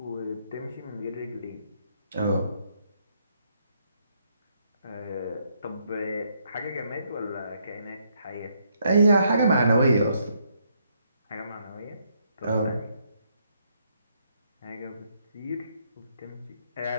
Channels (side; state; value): both; inverted; correlation -0.74